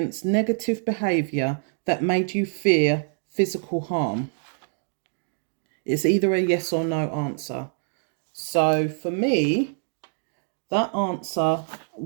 negative behaviour that made you fear physical harm? It's either a yes or no answer. So for me, that answer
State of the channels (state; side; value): silent; left; digital silence